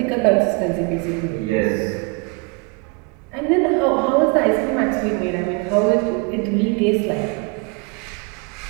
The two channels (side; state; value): left; quieter; 30.8 dB